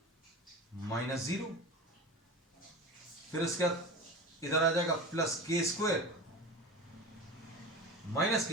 माइनस 0, फिर इसके बाद इधर आ जाएगा प्लस के स्क्वायर माइनस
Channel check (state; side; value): normal; both; correlation 0.31